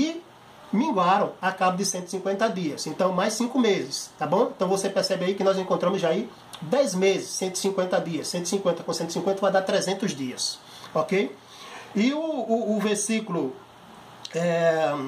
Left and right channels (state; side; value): identical; both; correlation 1.00